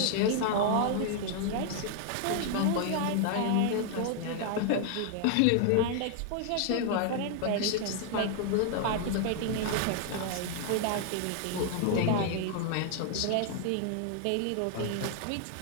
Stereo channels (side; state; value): both; different; correlation 0.00